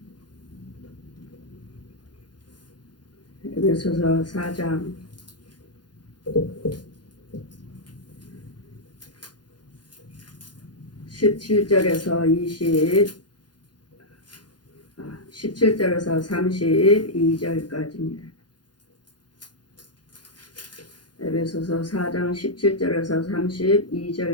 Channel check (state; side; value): late; right; 0.70 ms